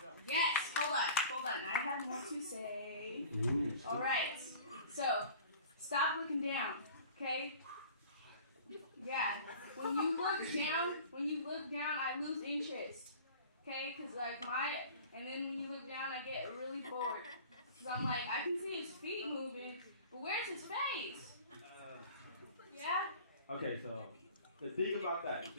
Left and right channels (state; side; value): inverted; both; correlation -0.43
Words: Yes, hold on. I have more to say. All right. So, stop looking down, okay? Yeah. When you look down, I lose interest, okay? And then when you look down, I get really bored. Because I'm like, I can see his feet moving, but where's his face? Yeah? Okay, so the thing about that,